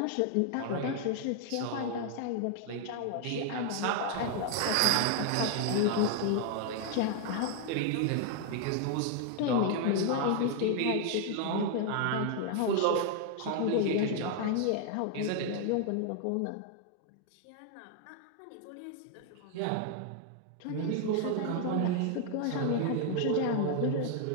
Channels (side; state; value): both; different; correlation 0.00